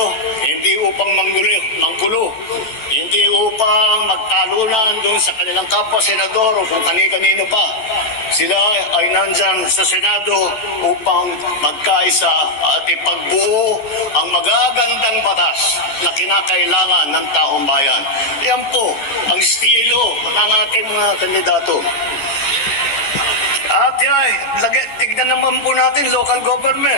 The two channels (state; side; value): late; right; 14 ms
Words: hindi upang manggulo, hindi upang magtalunan doon sa kanilang kapwa senador o kung kani-kanino pa. Sila ay nandyan sa Senado upang magkaisa at ipagbuo ang magagandang batas na kinakailangan ng taong bayan. Yan po ang estilo ng ating mga kandidato. At tignan naman po natin local